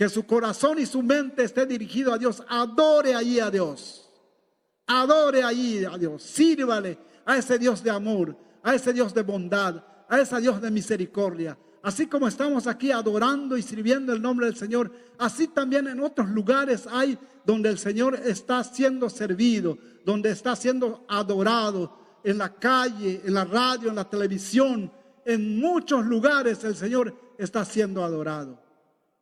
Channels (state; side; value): identical; both; correlation 1.00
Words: su corazón y su mente esté dirigido a Dios, adore allí a Dios. Adore allí a Dios, sírvale a ese Dios de amor, a ese Dios de bondad, a ese Dios de misericordia. Así como estamos aquí adorando y sirviendo el nombre del Señor, así también en otros lugares hay donde el Señor está siendo servido, donde está siendo adorado, en la calle, en la radio, en la televisión. En muchos lugares el Señor está siendo adorado,